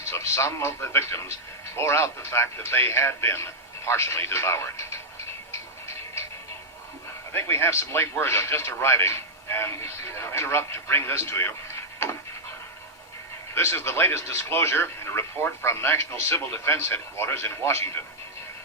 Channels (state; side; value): normal; both; correlation -0.04